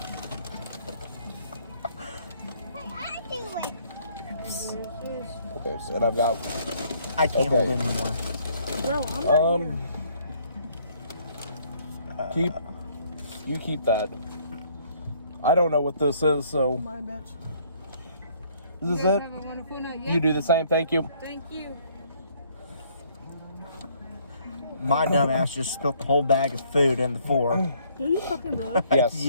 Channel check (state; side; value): inverted; both; correlation -0.63